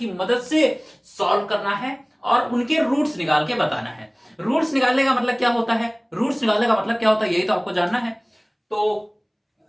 मदद से सॉल्व करना है और उनके रूट्स निकाल के बताना है। रूट्स निकालने का मतलब क्या होता है, रूट्स निकालने का मतलब क्या होता है, यही तो आपको जानना है। तो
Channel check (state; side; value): identical; both; correlation 1.00